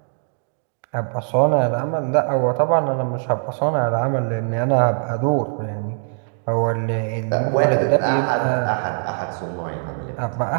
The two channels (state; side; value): silent; left; digital silence